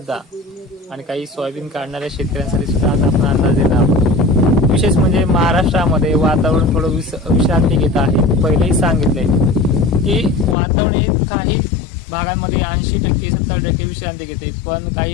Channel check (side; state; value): right; drops out; at 10.6 s